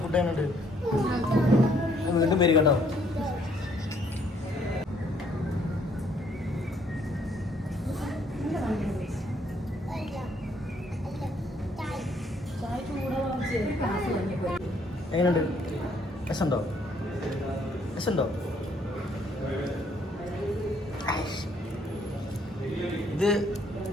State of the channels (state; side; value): normal; both; correlation 0.66